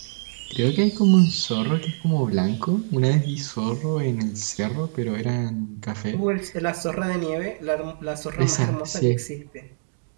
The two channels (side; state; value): left; silent; digital silence